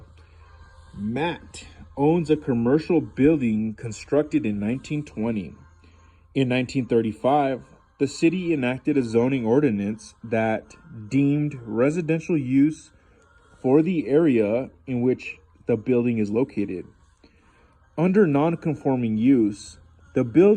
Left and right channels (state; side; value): identical; both; correlation 1.00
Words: Matt owns a commercial building constructed in 1920. In 1935, the city enacted a zoning ordinance that deemed residential use for the area in which the building is located. Under non-conforming use, the